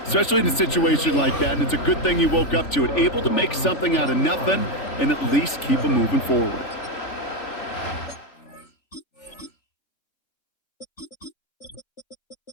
especially in a situation like that. And it's a good thing you woke up to it, able to make something out of nothing and at least keep them moving forward.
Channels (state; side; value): late; right; 3.4 ms